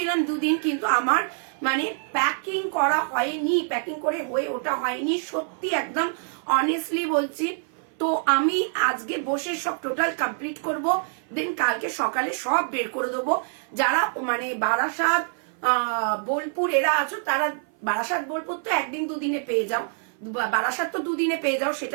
2 দিন, কিন্তু আমার মানে প্যাকিং করা হয়নি, প্যাকিং করে হয়ে ওটা হয়নি, সত্যি একদম অনেস্টলি বলছি। তো আমি আজকে বসে সব টোটাল কমপ্লিট করব, দেন কালকে সকালে সব বের করে দেবো। যারা মানে বারাসাত বোলপুর এরা আছো, তারা বারাসাত বোলপুর তো 1 দিন 2 দিনে পেয়ে যাও, বারাসাত তো 2 দিনে পেয়ে যাও,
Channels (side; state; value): left; silent; 56 dB below the other